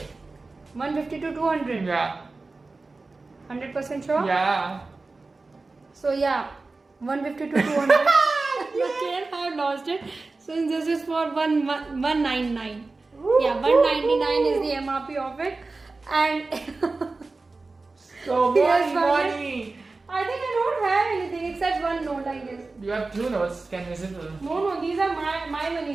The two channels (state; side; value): quieter; left; 3.6 dB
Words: 150 to 200. Yeah. 100% sure? Yeah. So yeah, 150 to 200. Again, I have lost it. So this is for 199. Yeah, 199 is the MRP of it, and So Yes, money. I think I don't have anything except one note, I guess. You have 2 notes. Can visible. No, these are my